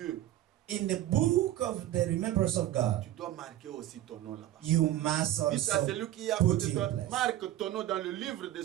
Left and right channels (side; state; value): left; quieter; 13.5 dB